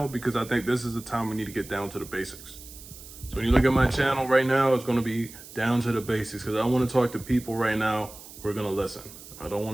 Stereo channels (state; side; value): noise; right; hiss, 17 dB below the sound